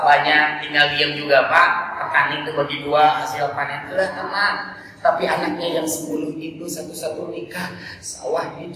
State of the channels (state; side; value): identical; both; correlation 1.00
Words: banyak, tinggal diam juga Pak. Petani itu bagi dua, hasil panen itu tenang. Tapi anaknya yang 10 itu satu-satu nikah, sawah